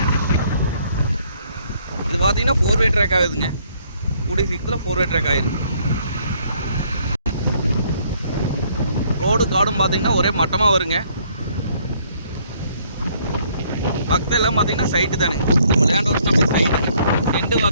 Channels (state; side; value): inverted; both; correlation -0.65